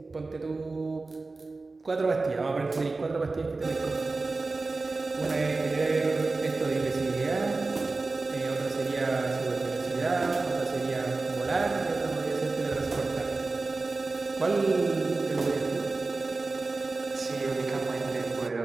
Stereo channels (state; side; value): quieter; left; 3.6 dB